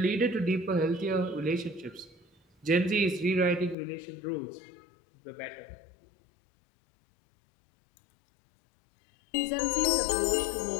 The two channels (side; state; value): right; drops out; at 3.8 s